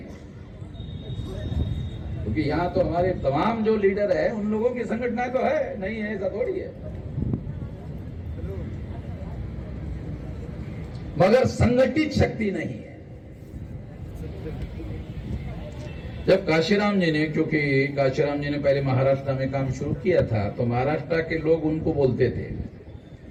क्योंकि यहां तो हमारे तमाम जो लीडर है उन लोगों की संगठनाएं तो है, नहीं है ऐसा थोड़ी है, मगर संगठित शक्ति नहीं है। जब काशीराम जी ने, क्योंकि काशीराम जी ने पहले महाराष्ट्र में काम शुरू किया था, तो महाराष्ट्र के लोग उनको बोलते थे,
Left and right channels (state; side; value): identical; both; correlation 1.00